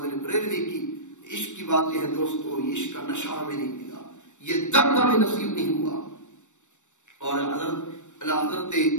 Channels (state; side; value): late; right; 0.85 ms